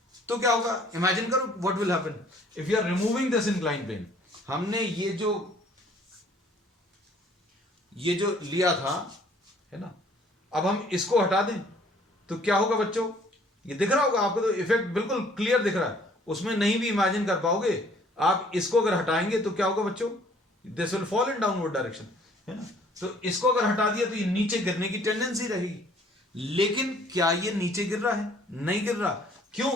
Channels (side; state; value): both; normal; correlation 0.58